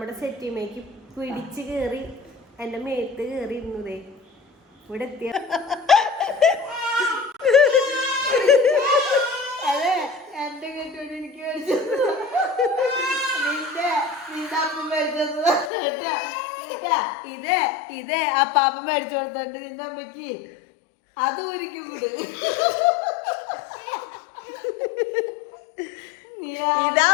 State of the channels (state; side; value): drops out; right; at 15.7 s